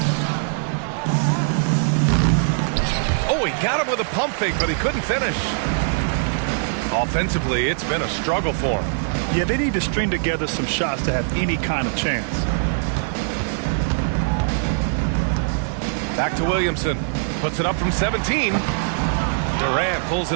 Oh, he got him with a pump fake, but he couldn't finish. Offensively, it's been a struggle for him. Yeah, they need to string together some shots to have any kind of chance. Back to Williamson. Puts it up from 17. Durant pulls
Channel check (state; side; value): silent; left; 64 dB below the other